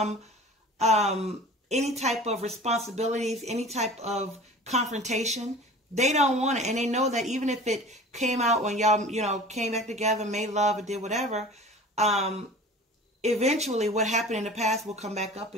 any type of responsibilities, any type of confrontation. They don't want it. And they know that even if it came out when y'all, you know, came back together, made love, or did whatever, eventually what happened in the past will come back up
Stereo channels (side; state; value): both; normal; correlation 0.40